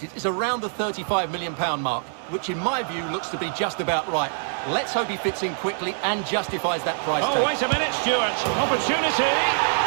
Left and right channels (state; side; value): silent; left; digital silence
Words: is around the £35 million mark, which in my view looks to be just about right. Let's hope he fits in quickly and justifies that price tag. Oh, wait a minute, Stuart. Opportunity.